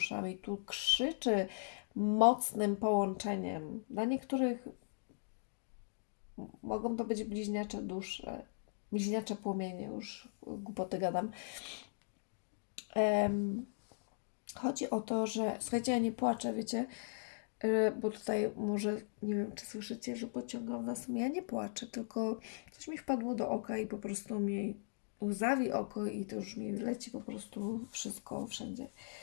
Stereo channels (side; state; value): right; silent; digital silence